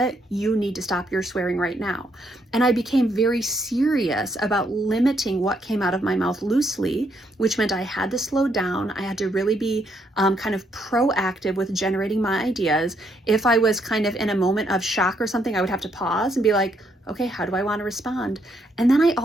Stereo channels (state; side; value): normal; both; correlation 0.74